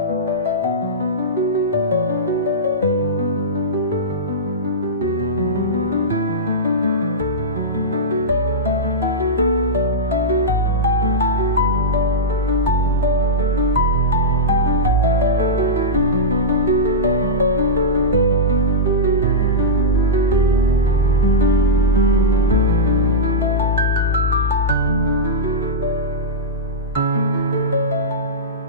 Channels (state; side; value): normal; both; correlation -0.12